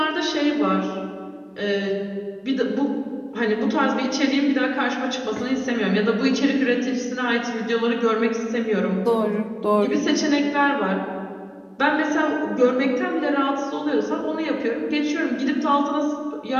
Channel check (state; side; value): identical; both; correlation 1.00